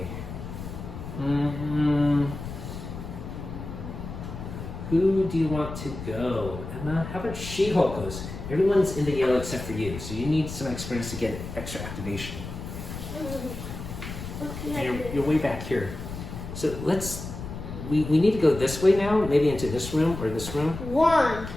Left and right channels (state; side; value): noise; left; rumble, 9 dB below the sound